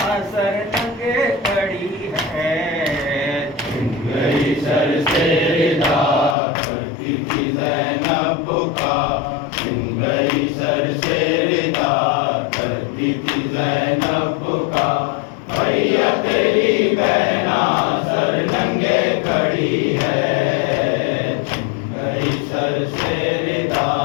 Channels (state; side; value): drops out; right; at 6.4 s